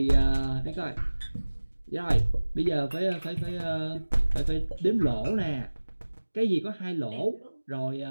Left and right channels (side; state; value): both; inverted; correlation -1.00